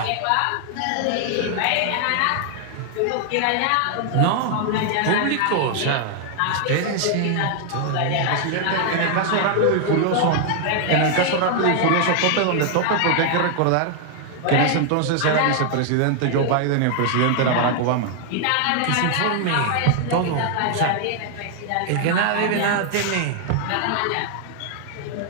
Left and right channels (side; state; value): both; different; correlation 0.00